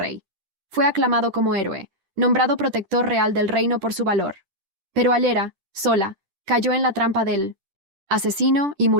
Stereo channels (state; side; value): late; left; 10 ms